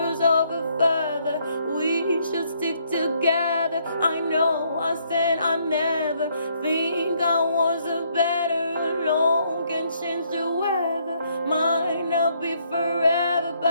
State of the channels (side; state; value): both; inverted; correlation -0.70